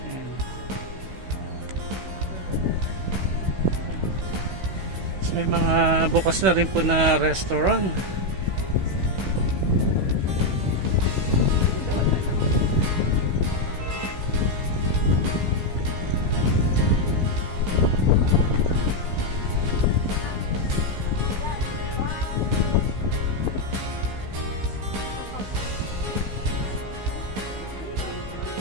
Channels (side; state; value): left; late; 16 ms